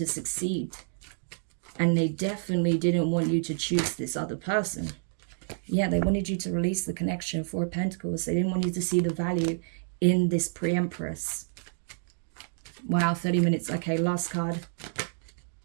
succeed. And they definitely didn't want you to choose this other person. Yeah, they wanted you to release the connection. 4 of Pentacles. They didn't want you to see the value in this pre-empress. Wow, 30 minutes. Okay, last card.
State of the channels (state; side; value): silent; left; digital silence